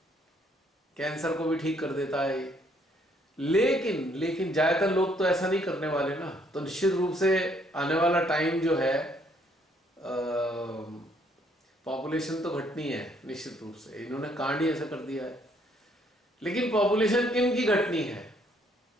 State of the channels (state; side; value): normal; both; correlation 0.67